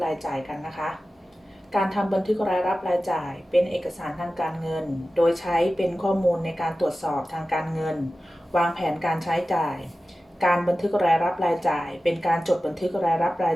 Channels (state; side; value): normal; both; correlation 0.95